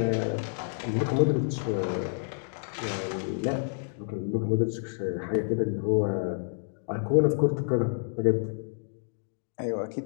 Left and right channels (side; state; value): right; silent; digital silence